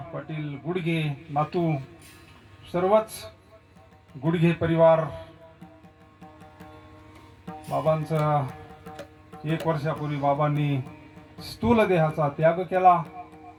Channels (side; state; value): both; identical; correlation 1.00